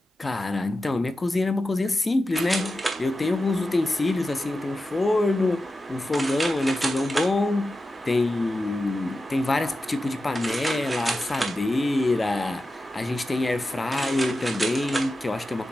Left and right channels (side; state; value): both; normal; correlation 0.92